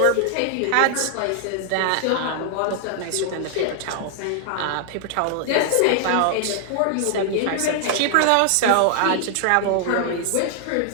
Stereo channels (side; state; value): both; different; correlation 0.00